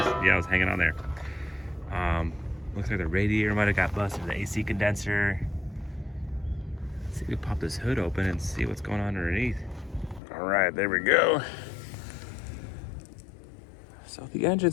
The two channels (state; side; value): drops out; right; at 10.2 s